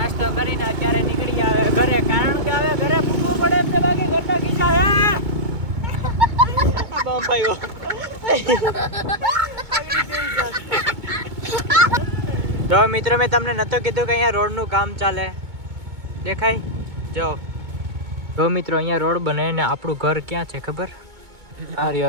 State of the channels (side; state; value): left; late; 2.2 ms